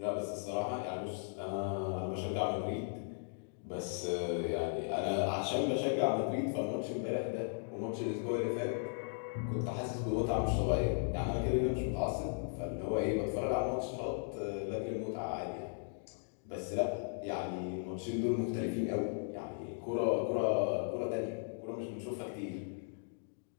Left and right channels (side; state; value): right; silent; digital silence